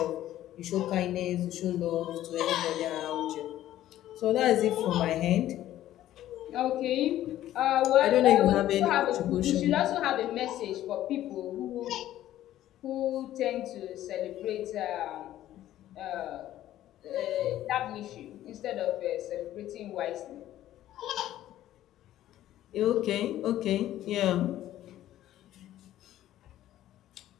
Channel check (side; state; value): right; quieter; 13.2 dB